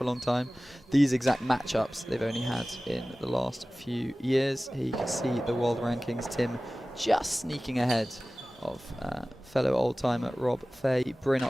a long time. These exact matchups they've only had in the last few years. Here you can see the world rankings. Tim just sneaking ahead of fellow old-timer Rob Fahey. Bryn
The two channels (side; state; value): both; normal; correlation 0.97